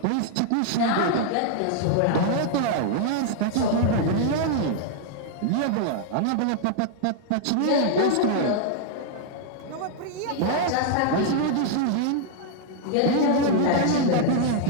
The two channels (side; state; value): both; different; correlation 0.00